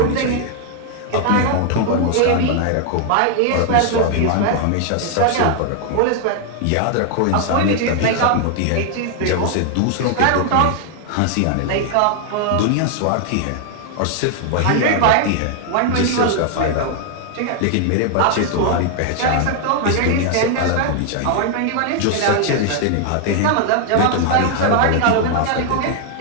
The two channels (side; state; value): both; different; correlation 0.00